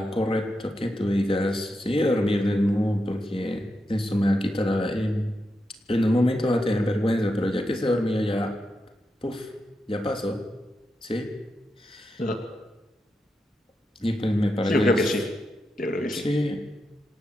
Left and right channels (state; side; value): normal; both; correlation 0.86